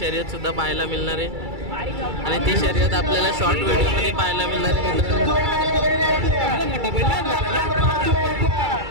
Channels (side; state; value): left; late; 2.3 ms